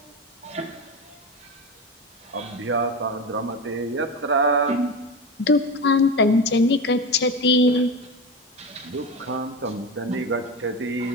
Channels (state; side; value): normal; both; correlation 0.23